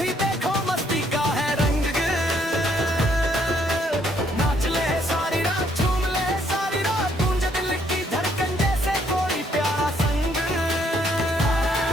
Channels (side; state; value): both; normal; correlation 0.69